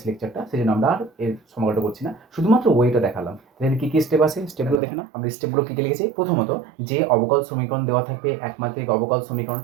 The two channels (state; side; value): drops out; left; at 4.8 s